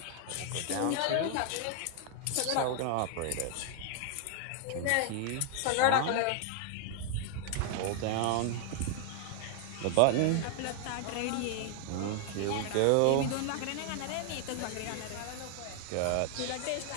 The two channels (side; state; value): both; different; correlation 0.00